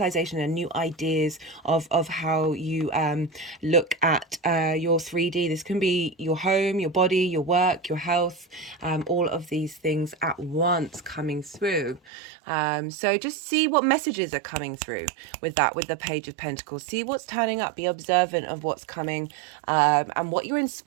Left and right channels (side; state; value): left; drops out; at 12.0 s